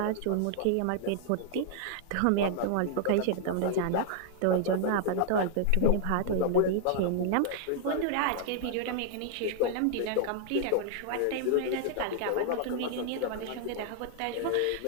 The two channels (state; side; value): different; both; correlation -0.01